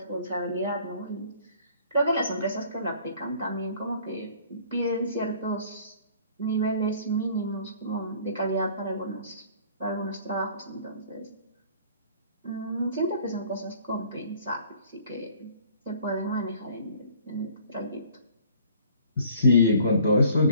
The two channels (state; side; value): inverted; both; correlation -0.54